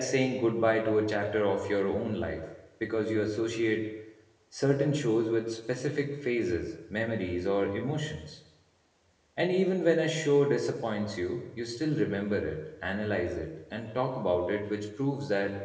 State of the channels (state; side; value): identical; both; correlation 1.00